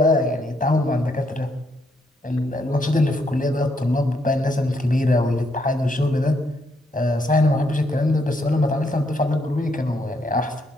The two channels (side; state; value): both; normal; correlation 0.75